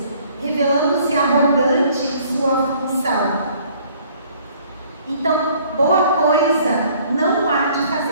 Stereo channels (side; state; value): both; inverted; correlation -0.58